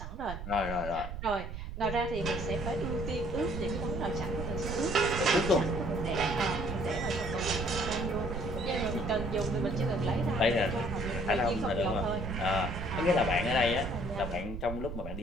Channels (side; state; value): right; noise; rumble, 8 dB below the sound